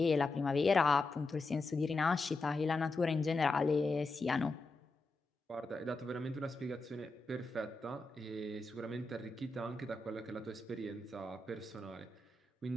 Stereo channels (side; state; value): right; quieter; 3.2 dB